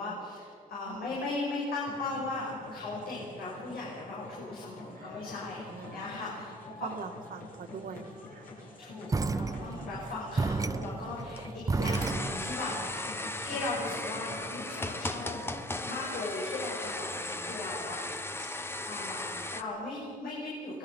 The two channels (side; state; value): both; normal; correlation 0.49